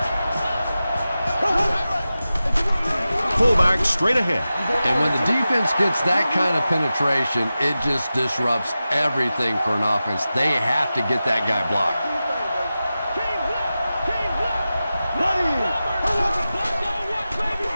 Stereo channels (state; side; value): inverted; both; correlation -0.94